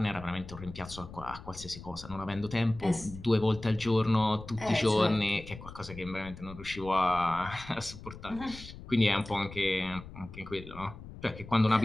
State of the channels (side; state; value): left; noise; rumble, 14 dB below the sound